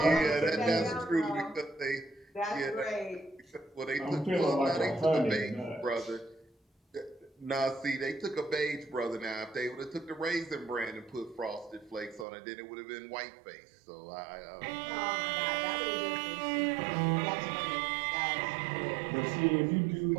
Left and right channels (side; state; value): left; drops out; at 12.2 s